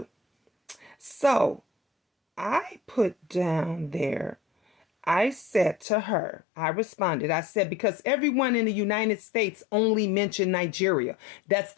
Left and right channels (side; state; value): right; drops out; at 5.9 s